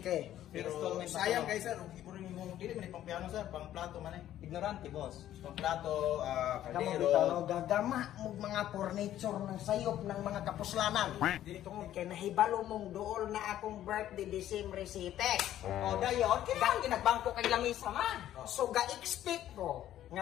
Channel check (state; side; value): quieter; right; 12.3 dB